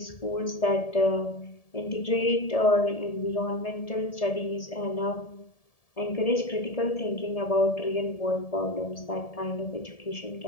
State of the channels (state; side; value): late; right; 1.7 ms